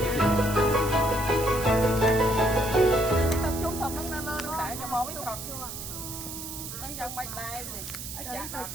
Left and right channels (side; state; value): right; noise; hiss, 8 dB below the sound